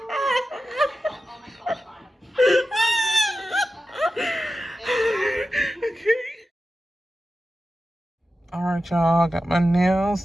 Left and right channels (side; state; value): both; normal; correlation 0.92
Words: Alright, y'all, got my nails